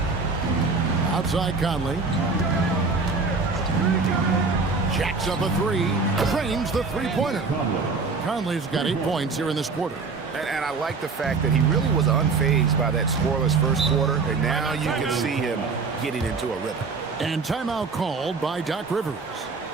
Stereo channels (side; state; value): left; quieter; 4.4 dB